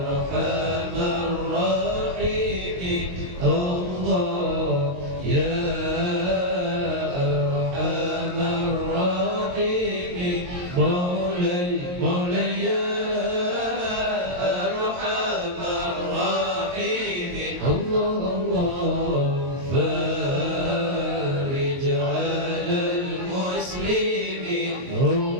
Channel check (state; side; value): late; left; 22 ms